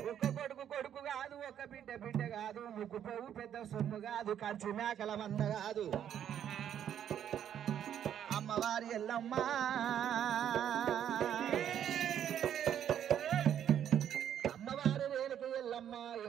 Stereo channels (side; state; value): left; quieter; 9.8 dB